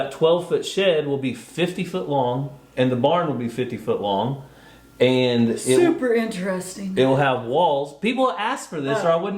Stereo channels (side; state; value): both; identical; correlation 1.00